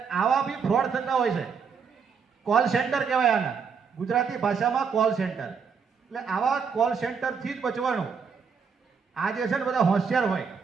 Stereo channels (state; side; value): quieter; left; 6.1 dB